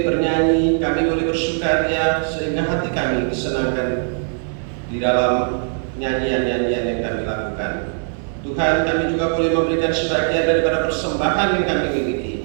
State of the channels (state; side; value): silent; left; 66 dB below the other